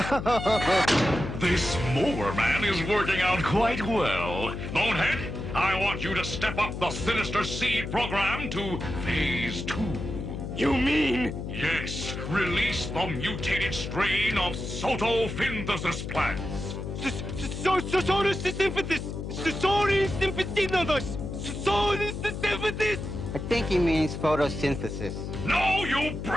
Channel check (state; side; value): noise; left; hum, 6 dB below the sound